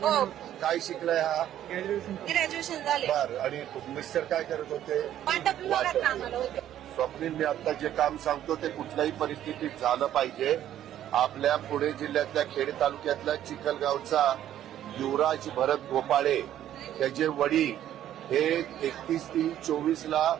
हो काय शिकलाय हा? ग्रॅज्युएशन झाले. बर. आणि मिस्टर काय करत होते? वाटप विभागात कामाला होते. स्वप्नील, मी आता जे काम सांगतो ते कुठल्याही परिस्थितीत झालं पाहिजे. आपल्या पुणे जिल्ह्यातल्या खेड तालुक्यातल्या चिखलगावचा युवराज भरत गोपाळे त्याचे वडील हे 31/3/24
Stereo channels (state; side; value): quieter; left; 11.6 dB